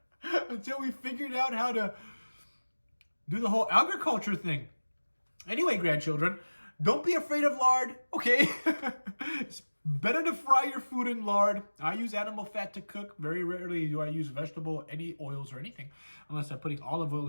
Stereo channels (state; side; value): inverted; both; correlation -1.00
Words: Until we figured out how to do the whole agriculture thing. Anyway, grandchildren, don't be afraid of lard, okay? It's better to fry your food in lard. I use animal fat to cook. Very rarely do I use vegetable, any oils or anything, unless I'm putting olive oil